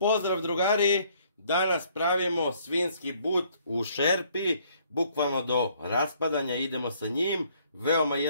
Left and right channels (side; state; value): both; inverted; correlation -0.64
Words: drugari, danas pravimo svinjski but u šerpi, bukvalno do raspadanja idemo sa njim, veoma